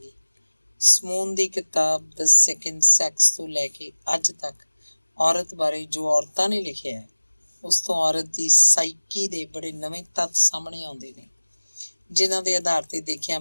ਸਮੂਨ ਦੀ ਕਿਤਾਬ ਦ ਸੈਕਿੰਡ ਸੈਕਸ ਤੋਂ ਲੈ ਕੇ ਅੱਜ ਤੱਕ ਔਰਤ ਬਾਰੇ ਜੋ ਔਰਤਾਂ ਨੇ ਲਿਖਿਆ ਹੈ, ਉਸ ਤੋਂ ਔਰਤ ਦੀ ਸਾਈਕੀ ਦੇ ਬੜੇ ਨਵੇਂ ਤੱਥ ਸਾਹਮਣੇ ਆਉਂਦੇ ਨੇ, ਜਿਨ੍ਹਾਂ ਦੇ ਆਧਾਰ 'ਤੇ ਦੇਖਿਆ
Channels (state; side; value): inverted; both; correlation -1.00